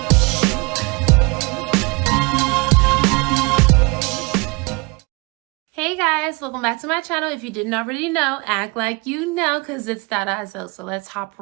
Hey guys, welcome back to my channel. If you didn't already know, act like you know, because it's that ISO. So let's hop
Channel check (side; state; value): left; quieter; 28.3 dB